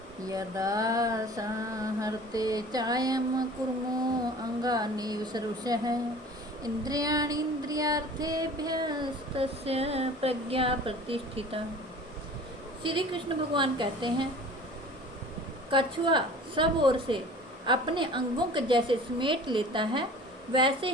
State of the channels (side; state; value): both; normal; correlation 0.44